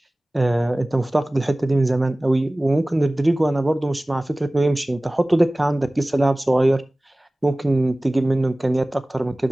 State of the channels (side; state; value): both; normal; correlation 0.98